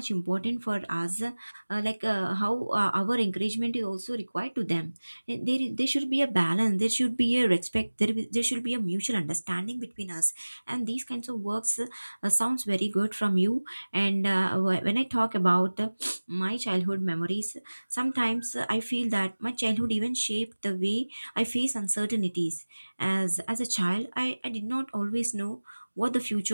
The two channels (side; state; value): both; inverted; correlation -1.00